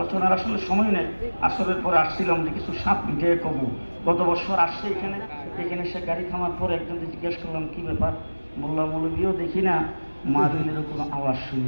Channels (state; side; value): inverted; both; correlation -1.00